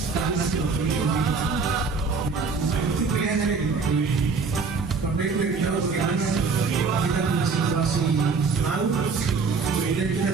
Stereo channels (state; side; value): quieter; left; 4.7 dB